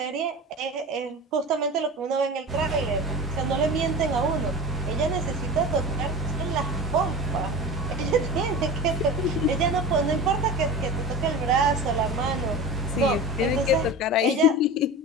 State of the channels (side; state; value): both; normal; correlation 0.31